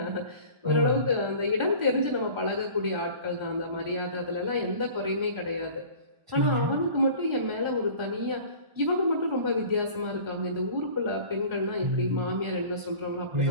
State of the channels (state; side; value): late; left; 1.4 ms